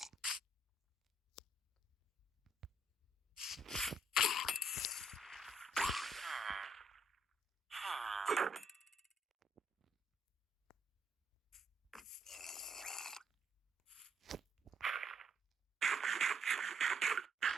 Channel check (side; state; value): both; normal; correlation 0.70